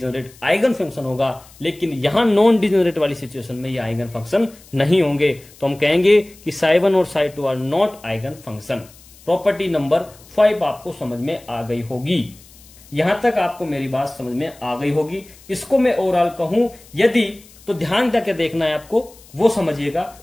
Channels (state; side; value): noise; left; hiss, 24 dB below the sound